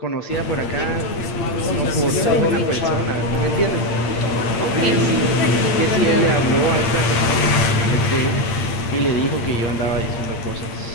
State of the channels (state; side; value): late; right; 8.6 ms